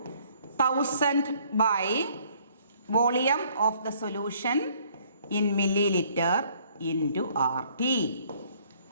1000 by volume of the solution in milliliter into RT.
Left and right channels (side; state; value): both; inverted; correlation -0.61